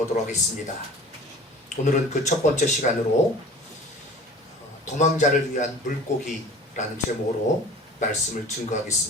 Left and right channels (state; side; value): normal; both; correlation 0.43